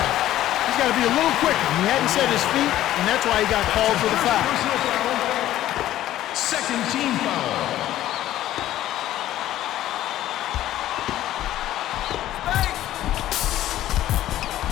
He's got to be a little quicker. He hadn't set his feet, and that's why he got called for the foul. Personal foul. Second team foul.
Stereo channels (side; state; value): right; quieter; 13.5 dB